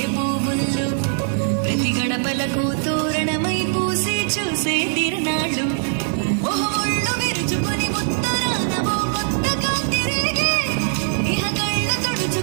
పువ్వుళ్ళు ప్రతి గడపలకు తోరణమై పూసి చూసే తిరునాళ్ళు ఒళ్ళు విరుచుకొని ఉత్తరానవో కొత్త కాంతి రేగే ఇహ కళ్ళు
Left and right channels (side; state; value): left; silent; digital silence